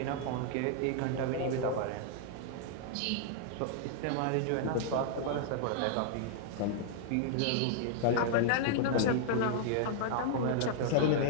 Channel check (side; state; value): both; different; correlation -0.01